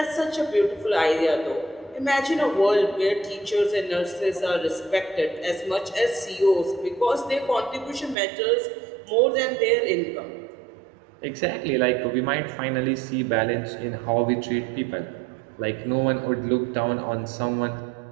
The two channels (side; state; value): left; drops out; at 8.2 s